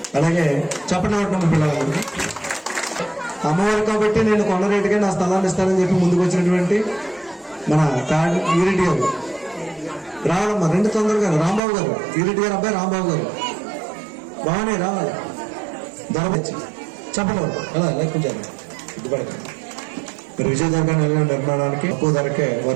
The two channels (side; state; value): left; drops out; at 11.6 s